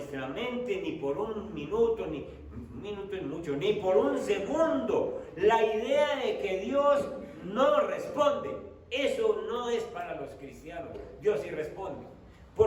mente, ni por un minuto, ni un minuto es mucho, ni por un segundo, la idea de que Dios no responde. Eso no es para los cristianos. Dios sí responde.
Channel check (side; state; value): both; identical; correlation 1.00